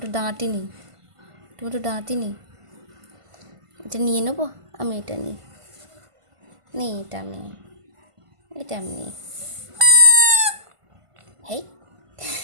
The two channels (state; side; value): late; left; 1.5 ms